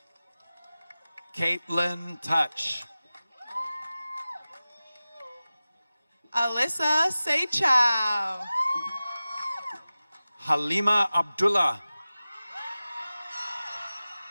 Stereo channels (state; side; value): inverted; both; correlation -0.96